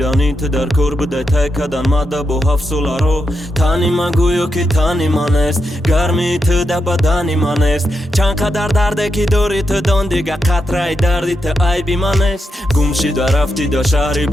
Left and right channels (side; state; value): both; normal; correlation 0.85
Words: تو در کار بوده تای کدن مده با 7 ساله رو تنی من گویو که تنی من است گرمی تو در بدنی من است چند قدر درده که داری تو دان دیگه قطره دردی تو عیبی من است گم شده رفتی در شهری